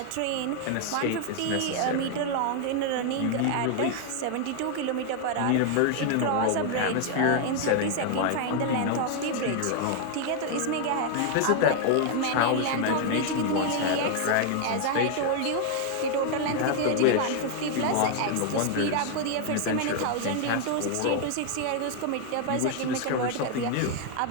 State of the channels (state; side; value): different; both; correlation 0.00